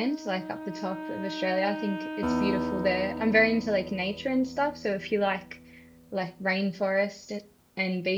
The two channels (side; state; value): both; identical; correlation 1.00